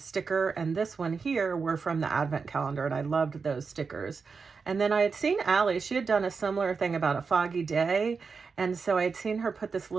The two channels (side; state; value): left; quieter; 5.1 dB